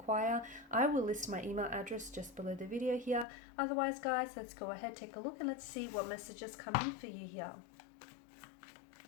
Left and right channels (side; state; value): right; drops out; at 3.2 s